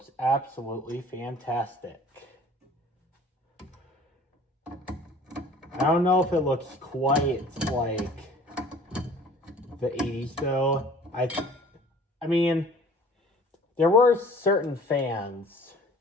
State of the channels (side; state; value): both; normal; correlation 0.49